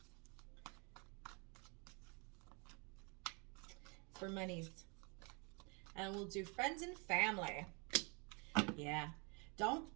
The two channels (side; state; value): left; quieter; 33.2 dB